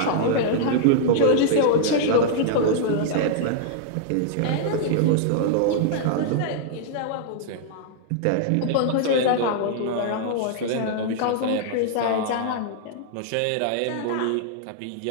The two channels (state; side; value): different; both; correlation -0.01